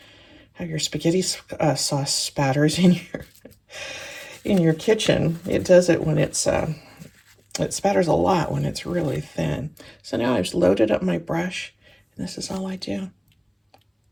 your spaghetti sauce spatters in your kitchen, it does it when it's it spatters a lot when it's really thin. So now I've just loaded up my brush, and this is all I do.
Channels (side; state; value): both; identical; correlation 1.00